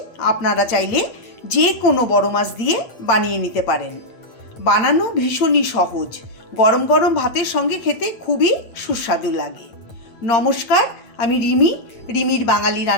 আপনারা চাইলে যে কোনো বড় মাছ দিয়ে বানিয়ে নিতে পারেন। বানানো ভীষণই সহজ, গরম গরম ভাতের সঙ্গে খেতে খুবই সুস্বাদু লাগে। নমস্কার, আমি রিমির বাঙালি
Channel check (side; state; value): right; late; 8.7 ms